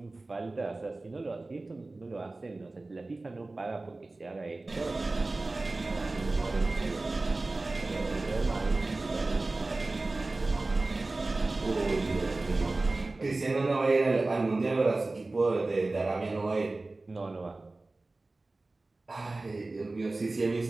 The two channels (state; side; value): quieter; left; 3.2 dB